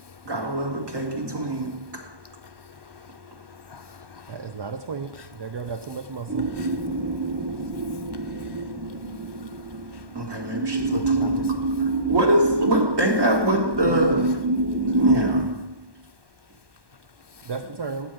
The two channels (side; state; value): left; late; 1.2 ms